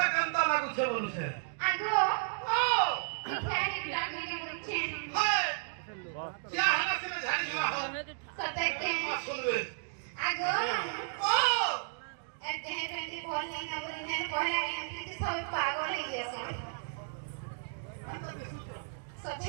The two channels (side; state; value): left; silent; digital silence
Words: Kenta लागु छे बोलु छे Ago ओ Khari blagni ke bolu chhe हाय क्या हला से झाड़ी हुआ हो Satekte सुन रे Ago O Ete he penti bol nahi na bolu ne pehla MP ti sob pagal hai gaya